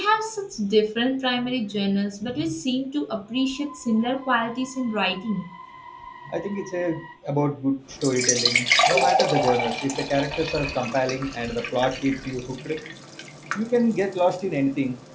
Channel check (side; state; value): both; identical; correlation 1.00